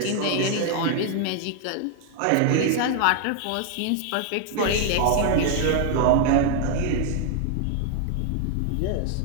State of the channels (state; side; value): different; both; correlation 0.00